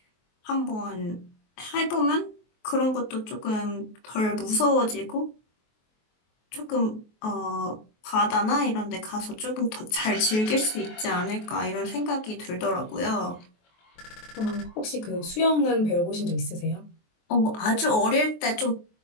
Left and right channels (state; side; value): late; right; 23 ms